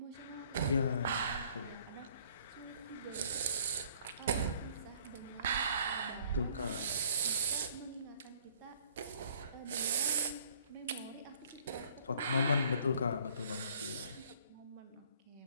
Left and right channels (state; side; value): inverted; both; correlation -0.58